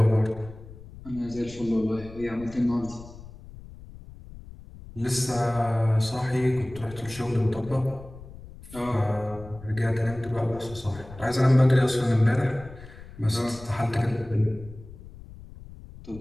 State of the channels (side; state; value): left; noise; rumble, 17 dB below the sound